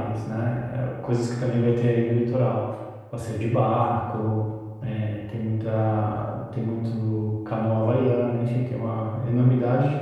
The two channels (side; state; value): both; identical; correlation 1.00